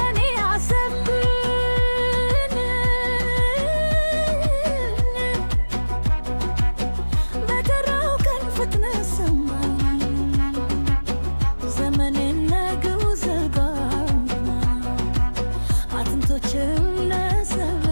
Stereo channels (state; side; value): inverted; both; correlation -1.00